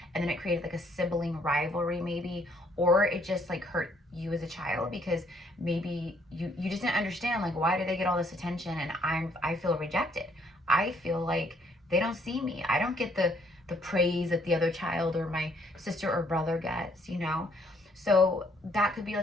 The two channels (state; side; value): normal; both; correlation 0.66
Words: and then it created like a sibling rivalry maybe, or it just like hurt you as a child because maybe you just didn't understand, like, why do they get all this attention and I feel rejected. I feel like they don't see me. I don't get the praise that the other child or my sister or brother gets, So that could be